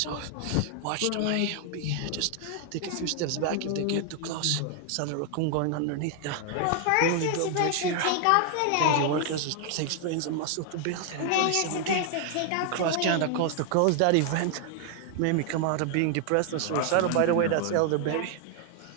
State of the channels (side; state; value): both; different; correlation 0.00